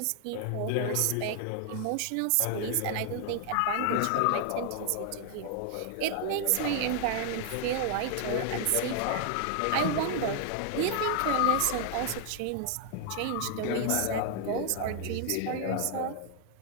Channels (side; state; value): both; different; correlation 0.00